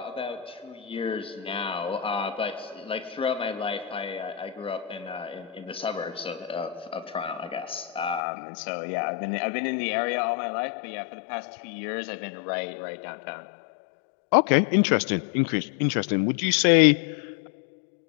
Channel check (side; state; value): right; drops out; at 8.2 s